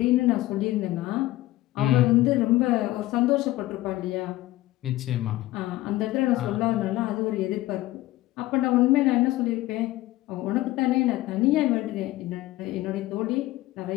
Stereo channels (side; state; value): right; quieter; 16.9 dB